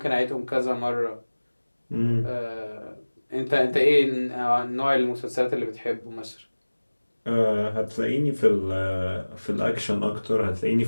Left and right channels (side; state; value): both; inverted; correlation -1.00